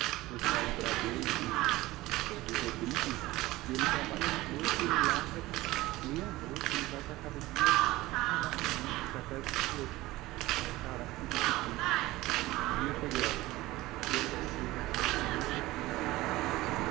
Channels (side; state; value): left; quieter; 18.5 dB